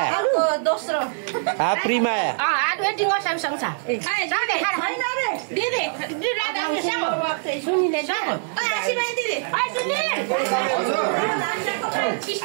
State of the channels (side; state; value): left; silent; digital silence